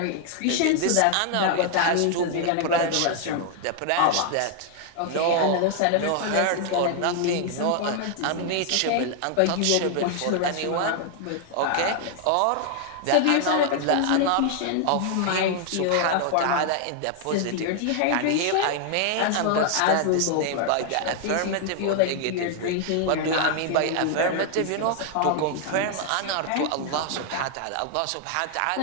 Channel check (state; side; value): different; both; correlation 0.00